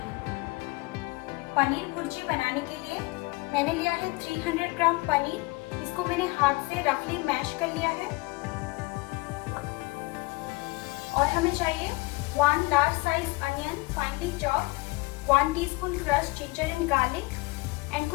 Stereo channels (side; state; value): right; quieter; 24.2 dB